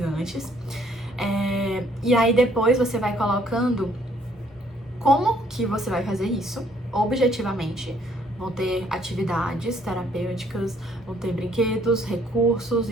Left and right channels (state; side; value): normal; both; correlation 0.64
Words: E aí, depois, você vai colocando como que você vai fazer isso objetivamente. Vão ter atividades terapêuticas, vão ter brinquedos, recursos